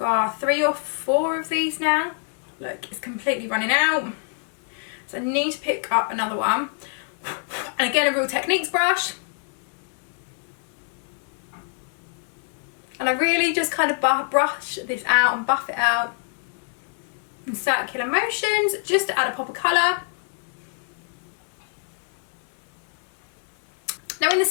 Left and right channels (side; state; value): right; silent; 56 dB below the other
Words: 3 or 4 of these now. Look, it's completely running out. So I need to pick up another one. And again, a Real Techniques brush. And I really just kind of brush this out and buff it out in circular motions, just to add a pop of colour. Now in the